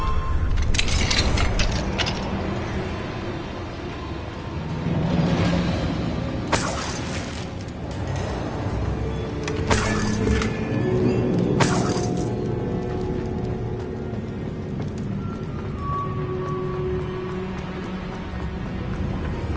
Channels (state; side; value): identical; both; correlation 1.00